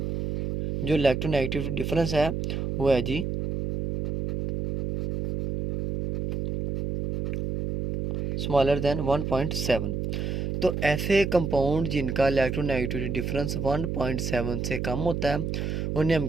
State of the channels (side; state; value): right; noise; hum, 2 dB below the sound